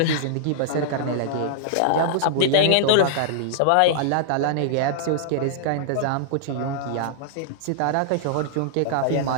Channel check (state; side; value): different; both; correlation -0.01